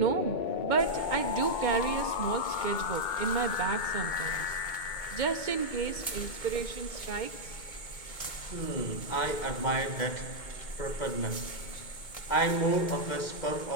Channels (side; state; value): right; late; 2.2 ms